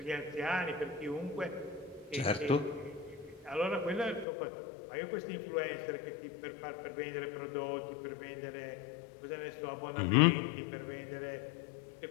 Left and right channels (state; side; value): drops out; right; at 4.2 s